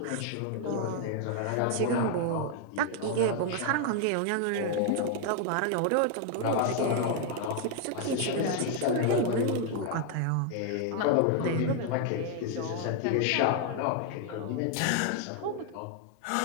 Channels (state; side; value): different; both; correlation 0.00